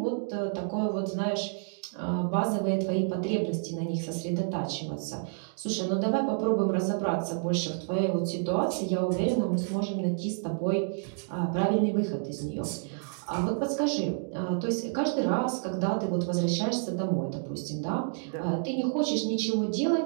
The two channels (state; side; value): silent; left; digital silence